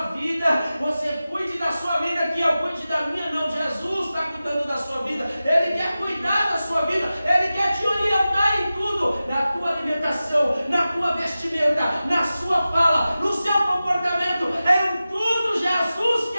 vida, você cuide da sua vida, que eu cuide da minha. Não, Jesus está cuidando da sua vida, Ele quer cuidar da sua vida, Ele quer te orientar em tudo, na tua alimentação, na tua vestimenta, na sua fala, no seu comportamento, em tudo Jesus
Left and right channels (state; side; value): inverted; both; correlation -0.94